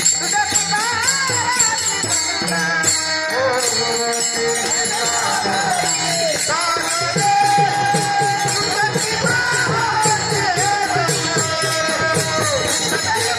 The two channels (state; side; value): identical; both; correlation 1.00